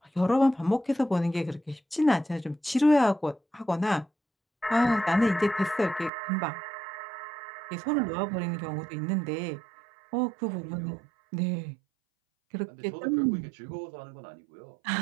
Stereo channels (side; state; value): left; drops out; at 6.1 s